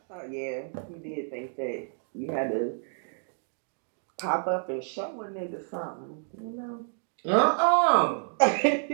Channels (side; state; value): left; silent; 58 dB below the other